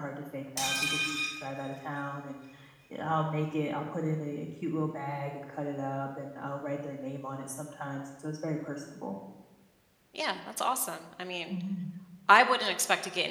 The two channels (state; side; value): identical; both; correlation 1.00